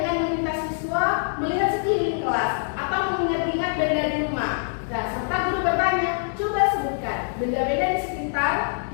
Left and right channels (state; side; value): silent; right; digital silence